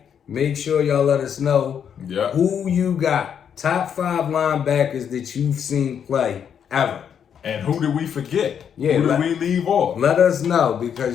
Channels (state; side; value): quieter; right; 8.1 dB